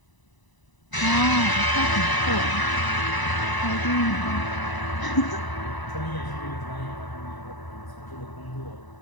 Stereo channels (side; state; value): right; late; 1.0 ms